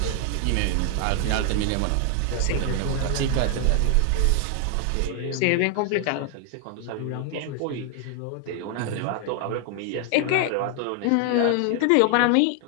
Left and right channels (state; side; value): different; both; correlation 0.00